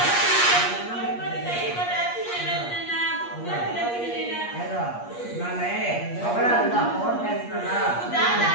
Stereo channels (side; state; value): right; late; 8.4 ms